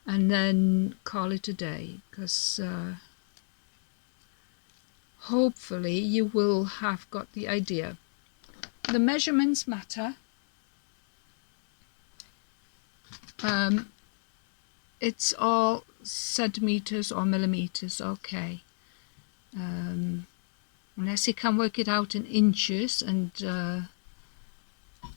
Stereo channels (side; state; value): right; silent; 59 dB below the other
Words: and then call it a day? Because hopefully you will have got the idea. The measurements matter. It's all centimeters or millimeters, okay. Unless you can work it out in inches, and